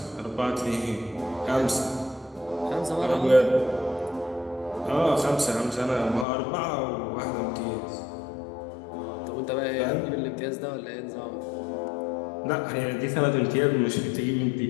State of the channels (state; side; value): drops out; right; at 6.2 s